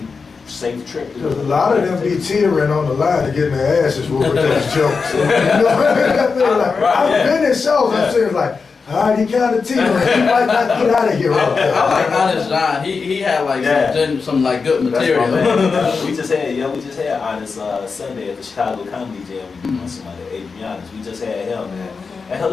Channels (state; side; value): quieter; right; 4.9 dB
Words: safe trip. To the Because a hood. lot of them be teetering on the line to getting their asses whooped with those jokes. You know what I mean? Like, I've been in shows, I'm saying like, all right, he kind of teetering. He might not get out of here. I like Honest John. He had like Yeah. some like good That's material. my man. we just had Honest Sunday at the Chicago Comedy Jam. We doing somebody, Adrianus. We just had him, man. And